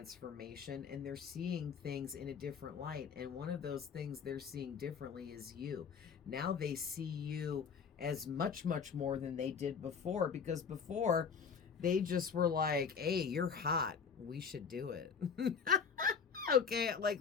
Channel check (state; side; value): quieter; right; 6.2 dB